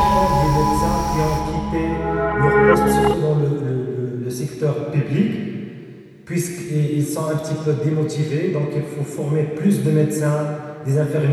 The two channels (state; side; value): identical; both; correlation 1.00